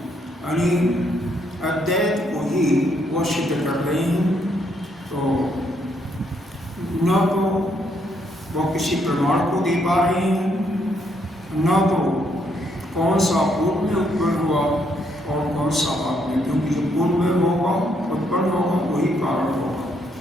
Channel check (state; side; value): normal; both; correlation 0.73